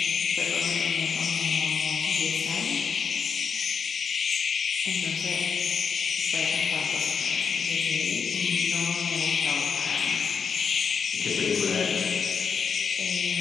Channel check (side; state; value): right; quieter; 6.1 dB